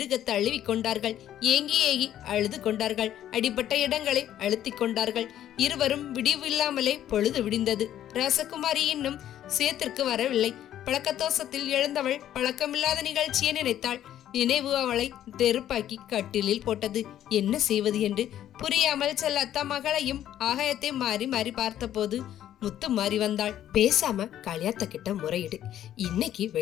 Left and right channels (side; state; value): right; quieter; 11.5 dB